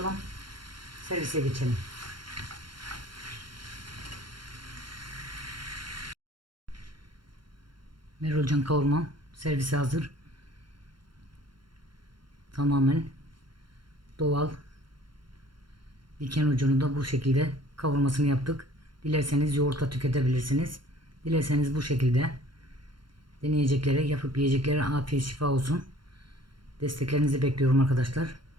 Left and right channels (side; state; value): left; late; 0.72 ms